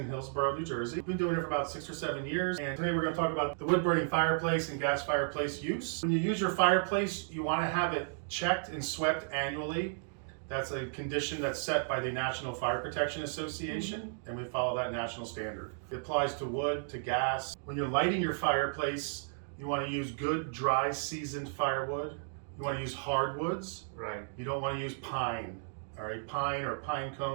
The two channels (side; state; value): left; silent; digital silence